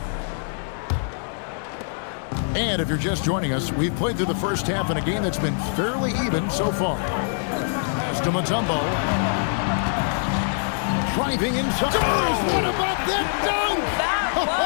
And if you're just joining us, we've played through the first half in a game that's been fairly even so far. As to Mutombo. Driving inside. What about that dunk? That was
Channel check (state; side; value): silent; right; digital silence